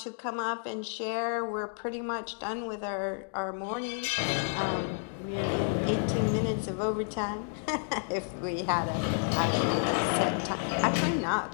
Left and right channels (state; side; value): silent; right; 57 dB below the other